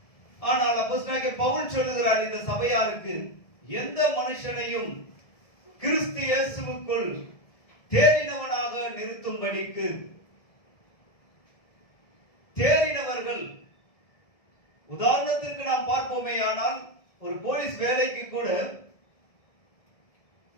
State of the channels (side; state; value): right; late; 1.7 ms